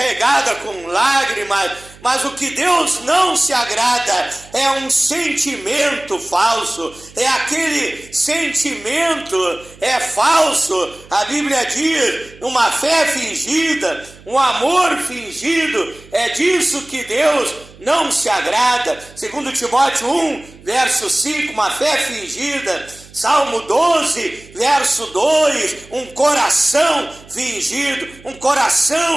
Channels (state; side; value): noise; right; hum, 23 dB below the sound